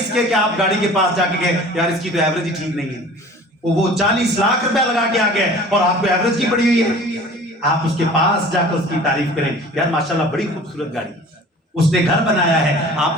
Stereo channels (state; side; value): normal; both; correlation 0.44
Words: کے کہ آپ گاڑی کے پاس جا کے کہیں یار اس کی تو ایوریج ہی ٹھیک نہیں ہے، وہ 40 لاکھ روپے لگا کے آ گیا اور آپ کو ایوریج کی پڑی ہوئی ہے۔ آپ اس کے پاس جا کر اس کی تعریف کریں، یار ماشاءاللہ بڑی خوبصورت گاڑی، اس نے گھر بنایا ہے، آپ